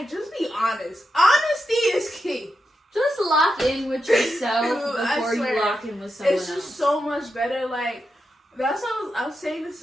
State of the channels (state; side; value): normal; both; correlation 0.87